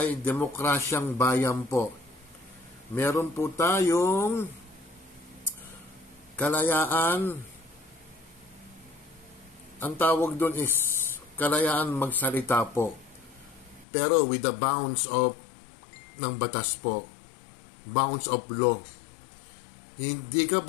demokrasyang bayan po. Meron po tayong kalayaan. Ang tawag doon is kalayaan magsalita po. Pero with the bounds of ng batas po. Bounds of law. Hindi ka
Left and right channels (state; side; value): drops out; right; at 13.9 s